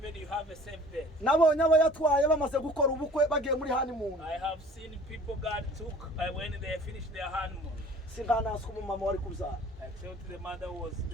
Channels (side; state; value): both; normal; correlation 0.49